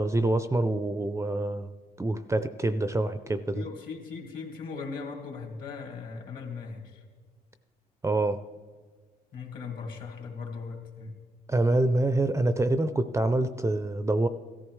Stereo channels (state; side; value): normal; both; correlation 0.86